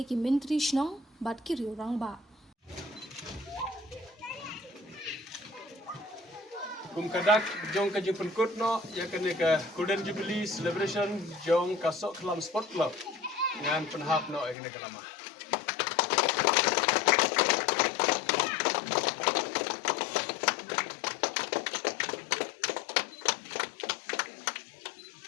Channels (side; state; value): right; drops out; at 14.6 s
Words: ki Menteri Shnong bat ki riu rang ba kum kadak jong ka jipun kutno ya kene ka Golden Jubilee Celebration jong ka Sokalam Sport Club ngan penhap no ya kene ka lama.